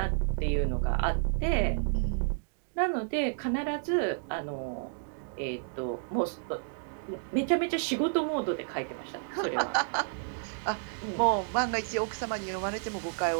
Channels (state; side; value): silent; left; digital silence